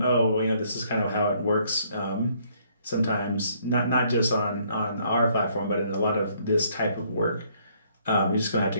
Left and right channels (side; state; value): both; inverted; correlation -0.66